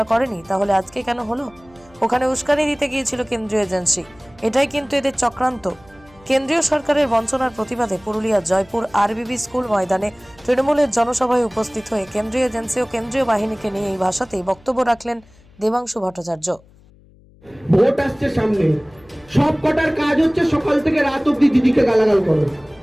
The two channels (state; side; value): noise; left; hum, 27 dB below the sound